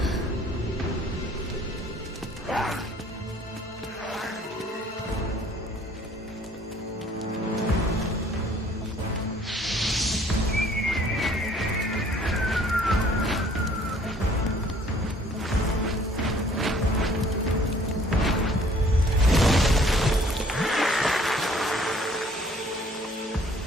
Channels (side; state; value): both; normal; correlation 0.57